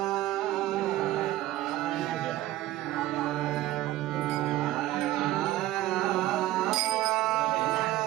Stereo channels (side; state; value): left; quieter; 15.3 dB